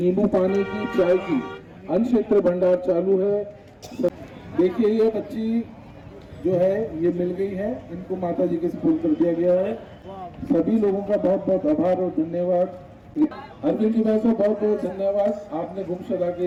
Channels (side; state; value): both; identical; correlation 1.00